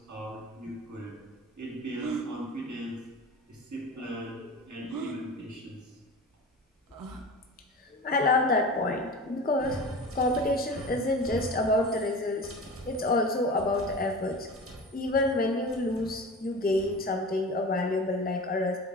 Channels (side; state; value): both; normal; correlation 0.34